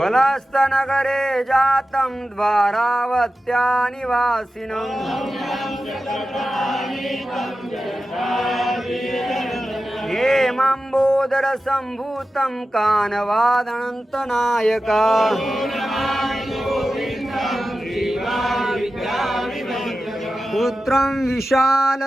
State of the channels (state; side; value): normal; both; correlation 0.93